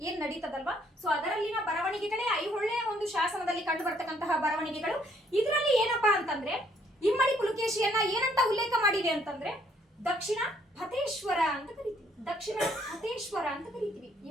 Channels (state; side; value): normal; both; correlation 0.66